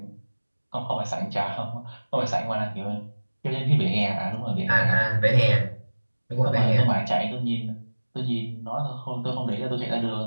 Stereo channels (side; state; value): both; inverted; correlation -1.00